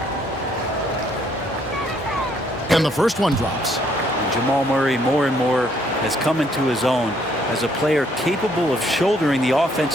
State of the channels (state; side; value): normal; both; correlation 0.67